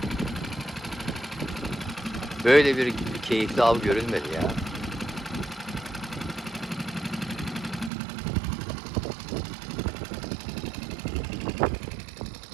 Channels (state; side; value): drops out; left; at 7.9 s